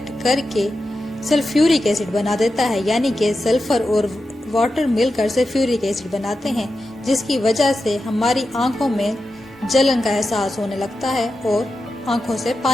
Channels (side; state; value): both; normal; correlation 0.90